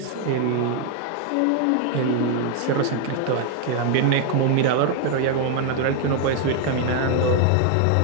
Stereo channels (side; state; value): both; different; correlation 0.00